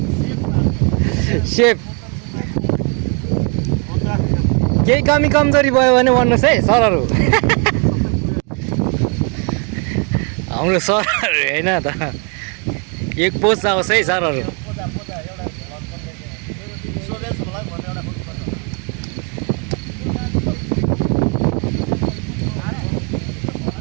सेफ केही कमी कमजोरी भयो भने भन्नुहोस् है सरहरू हाम्रो सरहरू होइन त एक पोस्ट आओस् है सरहरू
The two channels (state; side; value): quieter; left; 35.7 dB